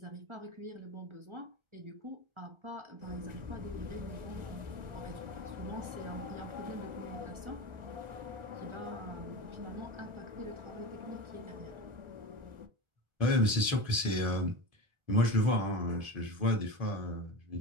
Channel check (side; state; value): left; late; 1.3 ms